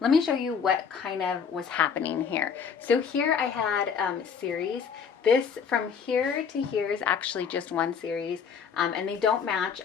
Let me show you what kind of was happening here. So here I had series. This from here to here is actually just one series, and they don't match.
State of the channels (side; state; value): right; quieter; 6.6 dB